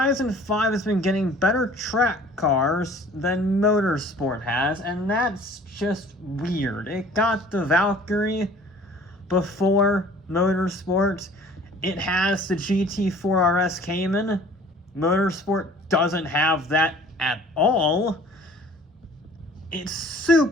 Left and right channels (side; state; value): both; normal; correlation 0.50